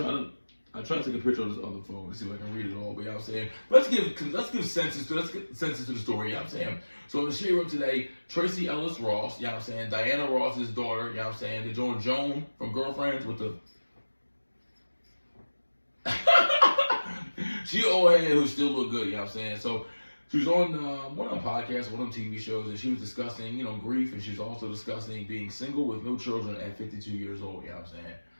try to take a picture of this other phone to see if I can read it all, but you know what I'm saying? Let's get senses to the story, you know what I'm saying? So in the Shade Room today, Tracy Ellis Ross, you know what I'm saying? Diana Ross's daughter, you know what I'm saying? They're doing Joan from Girlfriends with the she old head who still look good, you know what I'm saying? So she was on one of them podcasts, one of them TV shows, and she was discussing, you know, grief, and she was also discussing being single with no children at 52 years old, you know what I'm saying?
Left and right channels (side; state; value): both; inverted; correlation -1.00